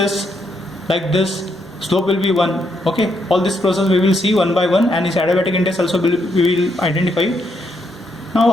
like this, slope will be 1. Okay, all this process we will see one by one, and its adiabatic index also we will identify. Now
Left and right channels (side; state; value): both; normal; correlation 0.77